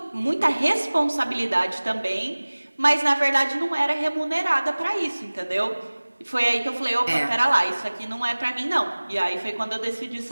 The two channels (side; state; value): both; inverted; correlation -1.00